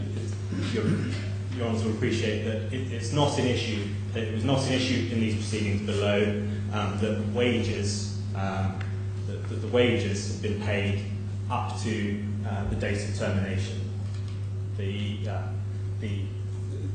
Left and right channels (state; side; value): identical; both; correlation 1.00